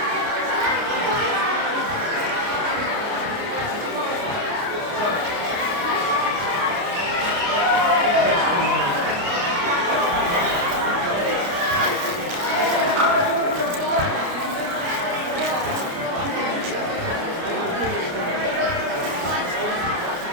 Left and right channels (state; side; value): late; left; 29 ms